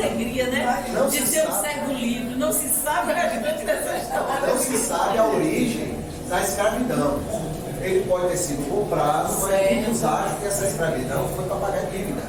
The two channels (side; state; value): both; identical; correlation 1.00